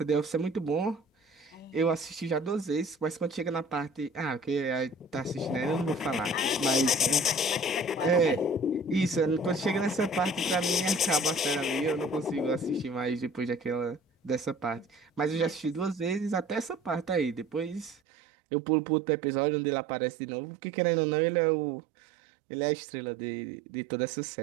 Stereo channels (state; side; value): drops out; left; at 17.9 s